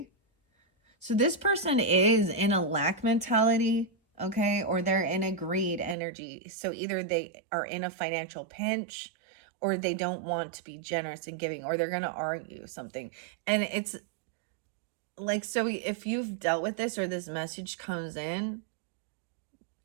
So this person is in a lack mentality, okay? Or they're in a greed energy. So either they are in a financial pinch, or they don't want to be generous and giving, or they're going to argue something. And it's like, so if you've dealt with this or this message comes in,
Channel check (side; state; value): left; drops out; at 6.0 s